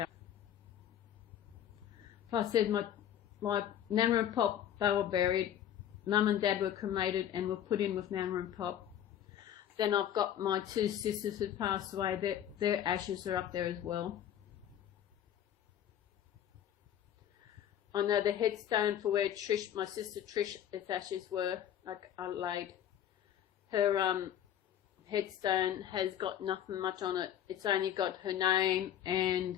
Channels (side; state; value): right; quieter; 10.5 dB